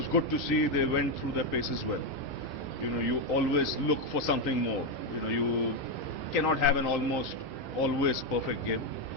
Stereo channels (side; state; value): both; normal; correlation 0.05